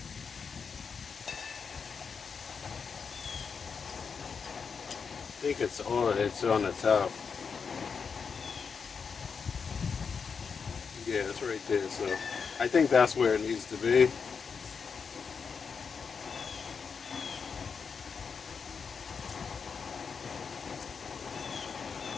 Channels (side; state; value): right; quieter; 5.8 dB